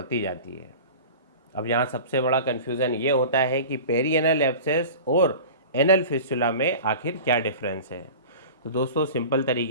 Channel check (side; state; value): both; inverted; correlation -0.37